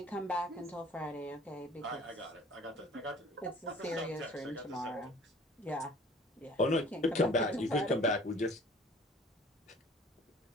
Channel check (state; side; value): normal; both; correlation 0.50